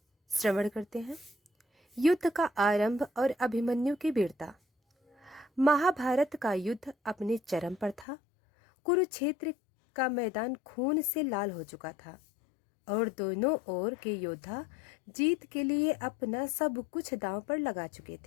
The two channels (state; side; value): drops out; right; at 8.1 s